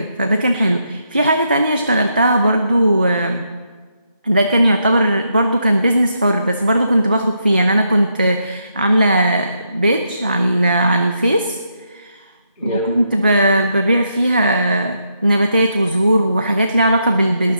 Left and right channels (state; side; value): inverted; both; correlation -0.79